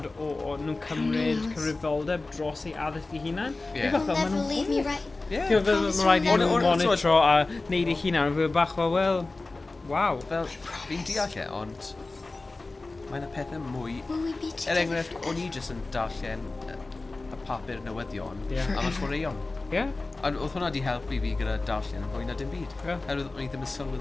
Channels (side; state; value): right; quieter; 3.3 dB